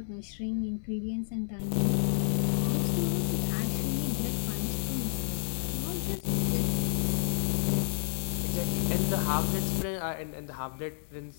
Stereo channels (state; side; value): silent; right; 58 dB below the other